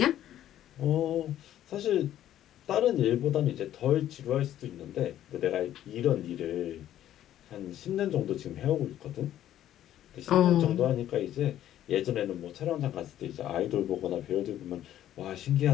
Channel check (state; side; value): quieter; right; 12.0 dB